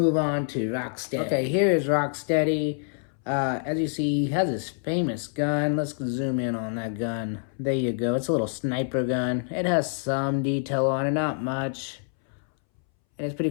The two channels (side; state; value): right; silent; 61 dB below the other